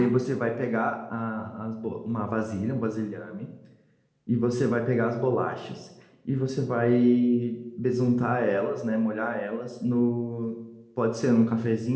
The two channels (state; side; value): identical; both; correlation 1.00